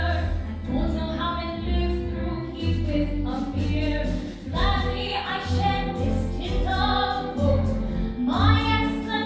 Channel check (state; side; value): identical; both; correlation 1.00